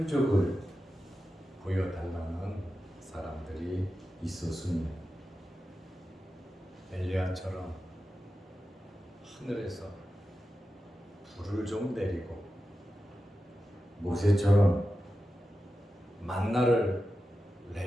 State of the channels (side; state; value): both; normal; correlation 0.92